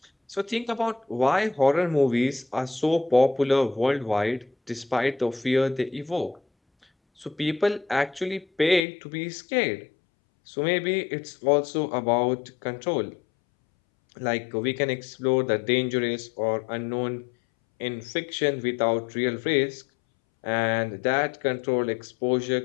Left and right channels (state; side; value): drops out; right; at 8.8 s